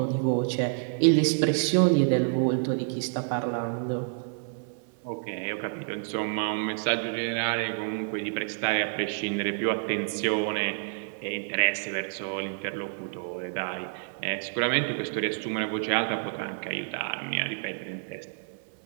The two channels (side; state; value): left; silent; 59 dB below the other